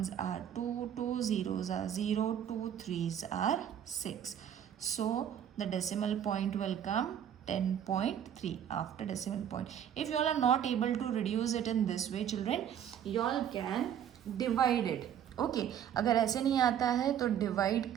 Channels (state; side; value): quieter; left; 9.5 dB